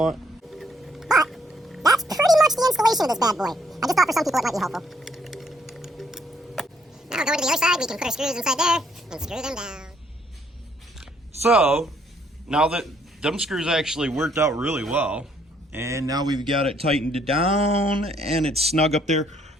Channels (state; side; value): normal; both; correlation 0.68